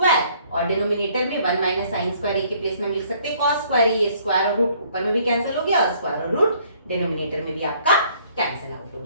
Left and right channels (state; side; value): inverted; both; correlation -0.62